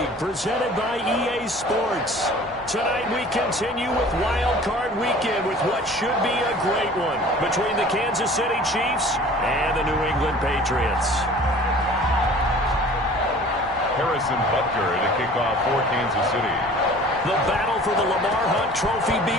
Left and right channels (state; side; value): normal; both; correlation 0.46